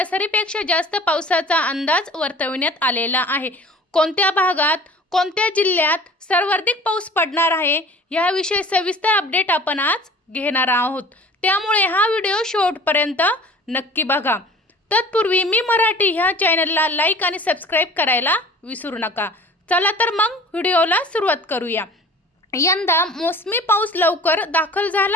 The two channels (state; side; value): normal; both; correlation 0.45